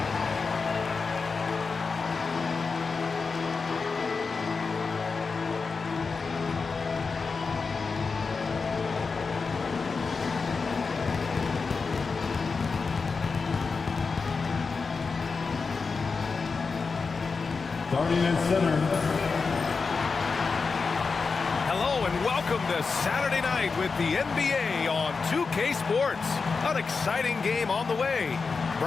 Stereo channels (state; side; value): quieter; right; 4.7 dB